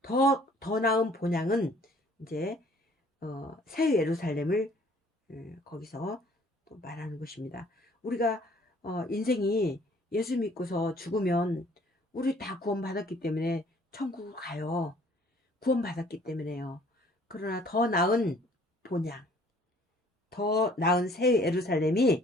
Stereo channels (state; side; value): normal; both; correlation 0.57